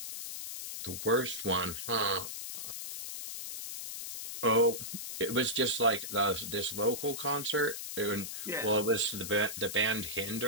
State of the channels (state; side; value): noise; left; hiss, 7 dB below the sound